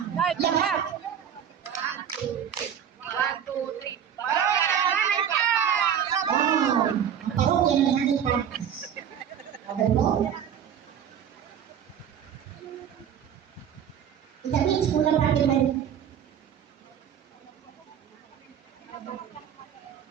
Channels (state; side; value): quieter; left; 8.9 dB